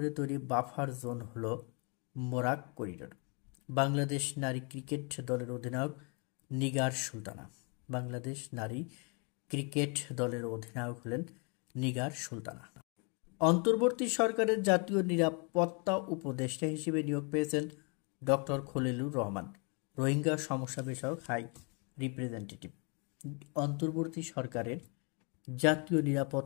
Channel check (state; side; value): quieter; right; 34.5 dB